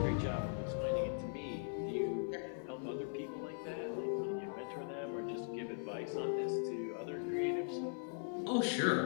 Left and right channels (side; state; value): right; silent; 51 dB below the other